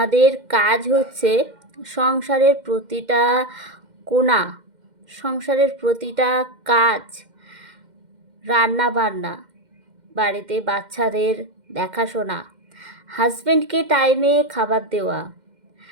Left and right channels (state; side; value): late; left; 2.1 ms